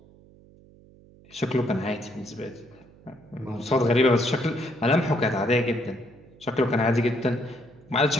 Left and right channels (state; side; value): noise; right; hum, 25 dB below the sound